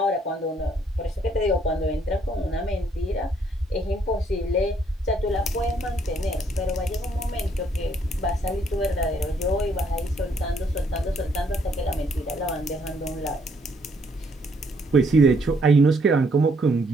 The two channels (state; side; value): normal; both; correlation 0.69